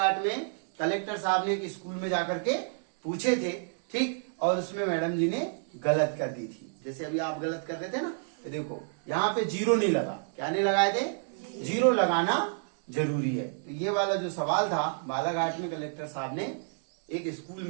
में, कलेक्टर साहब ने एक स्कूल में जाकर के पूछे थे, ठीक, और उसमें मैडम जी ने गलत कर दी थी। जैसे अभी आप गलत कर रहे थे ना, देखो यहाँ पे 0 नहीं लगा, क्या नहीं लगाए थे, 0 लगाना जरूरी है। तो ये वाला जो सवाल था बालाघाट में कलेक्टर साहब ने एक स्कूल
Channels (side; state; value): left; silent; digital silence